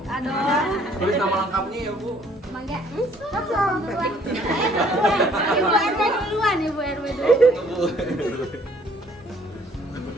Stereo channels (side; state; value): both; normal; correlation 0.60